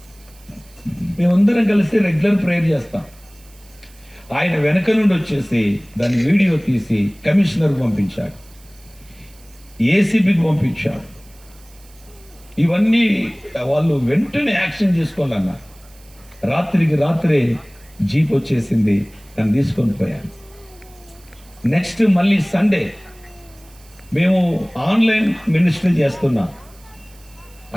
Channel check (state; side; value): noise; right; hiss, 26 dB below the sound